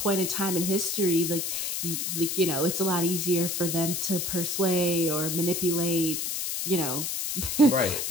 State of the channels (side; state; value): left; noise; hiss, 2 dB below the sound